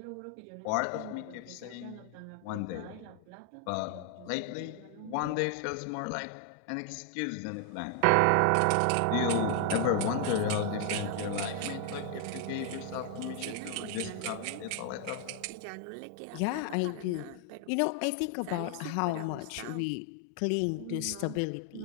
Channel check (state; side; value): different; both; correlation 0.00